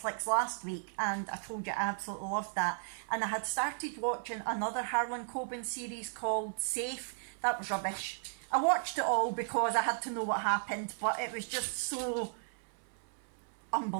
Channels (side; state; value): left; silent; 54 dB below the other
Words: last week, and I told you I absolutely loved that. And I had started watching another Harlan Coben series called Safe. That was rubbish. I watched it all because I had to know what happened, but it was just so